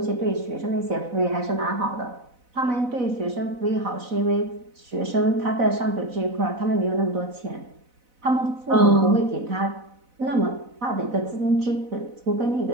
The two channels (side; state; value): left; late; 4.0 ms